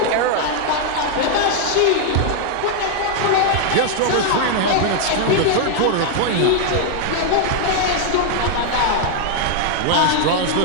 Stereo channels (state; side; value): different; both; correlation 0.00